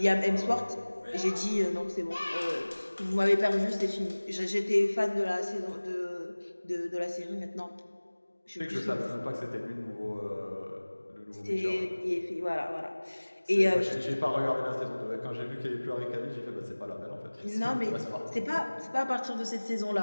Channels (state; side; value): inverted; both; correlation -1.00